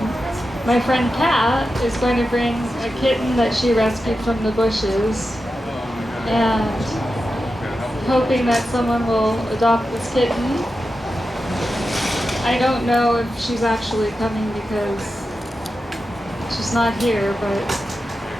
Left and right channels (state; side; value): normal; both; correlation 0.91